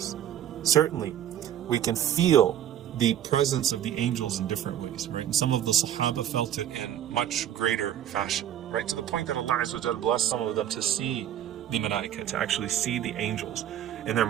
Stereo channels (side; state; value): left; quieter; 10.9 dB